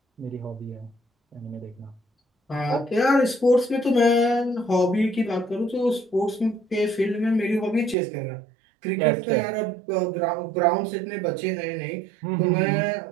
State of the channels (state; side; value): drops out; left; at 8.0 s